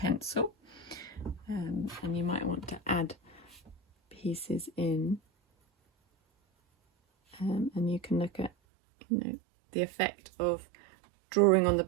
and you might want to add pieces in, and you can look at, you know, the effect of drawing on the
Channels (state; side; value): drops out; left; at 8.5 s